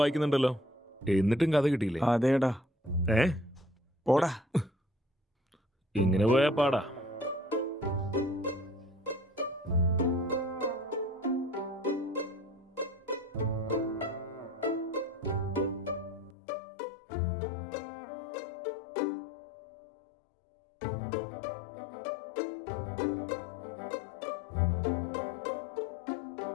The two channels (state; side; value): drops out; right; at 16.4 s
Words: വായിക്കുന്നുണ്ടല്ലോ, എന്നിട്ടും കഥ കിട്ടിയില്ലേ? അതേടാ. പോടാ. ഇങ്ങനെ പോയാ പാടാ.